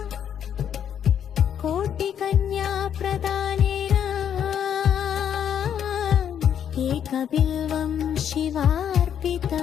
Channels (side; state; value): right; quieter; 9.0 dB